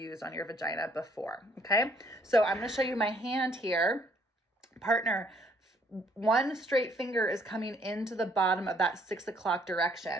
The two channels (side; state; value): both; normal; correlation 0.64